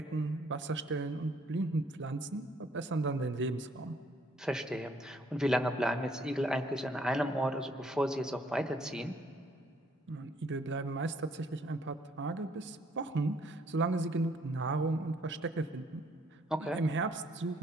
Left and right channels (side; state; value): both; normal; correlation 0.65